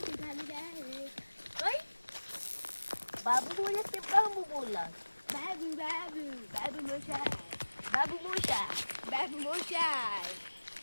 झालेली आहे. काय बाबू बोलला ते बाबू बोलला. बाबू बाबू बाबू मोशाय बाबू मोठा. बाबू मोशाय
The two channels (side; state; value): both; inverted; correlation -1.00